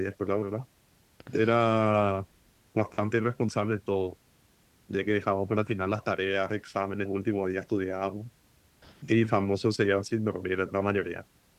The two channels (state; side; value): identical; both; correlation 1.00